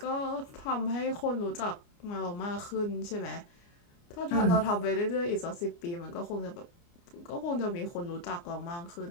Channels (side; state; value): right; late; 29 ms